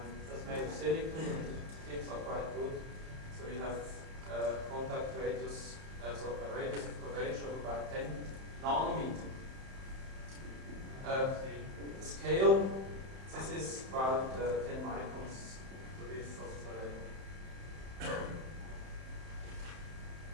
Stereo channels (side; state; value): left; late; 31 ms